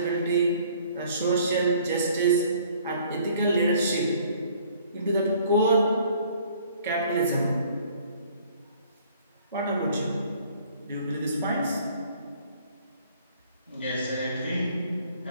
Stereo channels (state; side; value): inverted; both; correlation -0.57